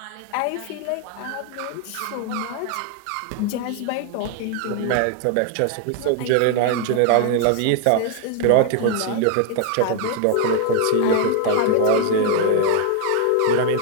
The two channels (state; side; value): different; both; correlation 0.00